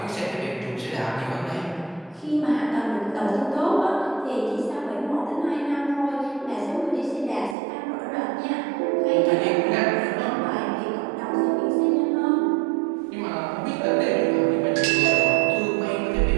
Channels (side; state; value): left; drops out; at 7.6 s